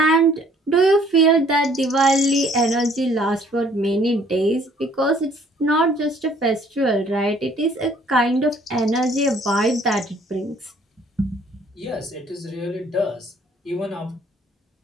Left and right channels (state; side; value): normal; both; correlation 0.59